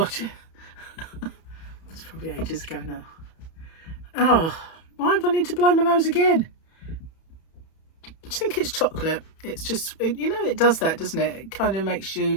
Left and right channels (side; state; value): right; late; 31 ms